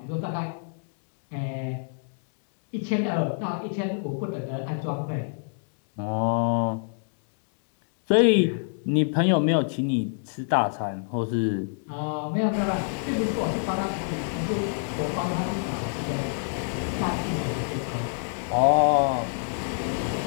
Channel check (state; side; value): silent; right; digital silence